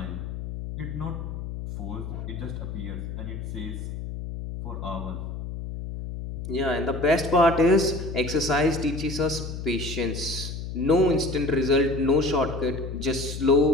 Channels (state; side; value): noise; left; hum, 7 dB below the sound